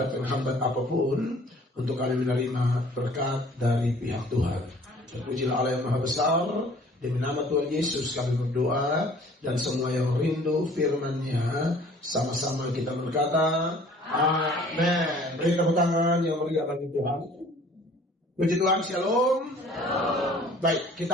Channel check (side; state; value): both; normal; correlation 0.52